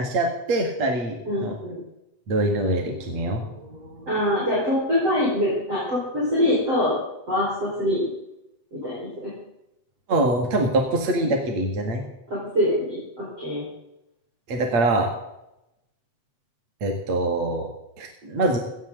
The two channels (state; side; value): late; left; 7.9 ms